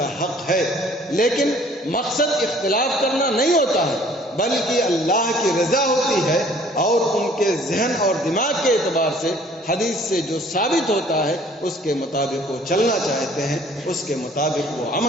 حق ہے، لیکن مقصد اختلاف کرنا نہیں ہوتا ہے بلکہ اللہ کی رضا ہوتی ہے، اور ان کے ذہن اور دماغ کے اعتبار سے حدیث سے جو ثابت ہوتا ہے اس کے مطابق وہ چلنا چاہتے ہیں، اس کے مطابق وہ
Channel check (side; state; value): both; normal; correlation 0.55